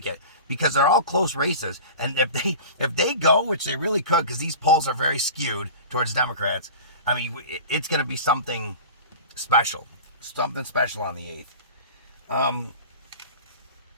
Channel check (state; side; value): inverted; both; correlation -0.36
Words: because they're all close races. And if they go, which they really could, because these polls are very skewed towards Democrats, I mean, it's going to be something special. Something special on the 8th.